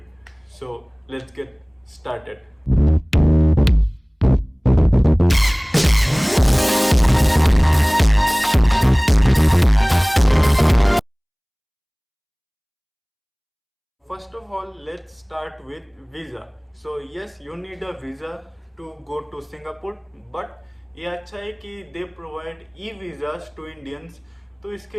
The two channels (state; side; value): identical; both; correlation 1.00